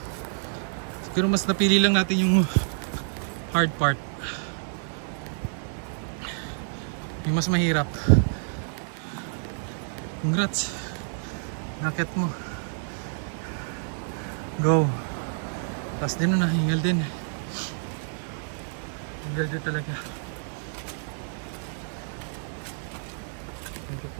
Siguro mas napili lang natin yung hard part. Yung mas mahirap. Congrats. Nakit mo. Go. Tapos din na, hingal din. Hingal din talaga. Medyo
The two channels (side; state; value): left; silent; 59 dB below the other